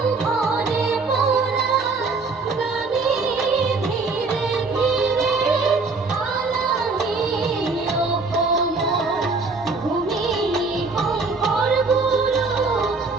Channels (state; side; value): quieter; left; 4.0 dB